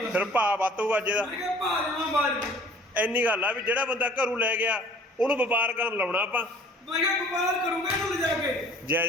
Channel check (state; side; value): normal; both; correlation 0.51